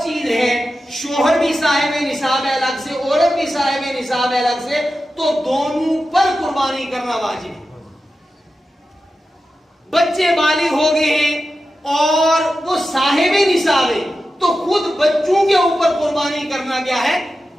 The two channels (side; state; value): both; normal; correlation 0.92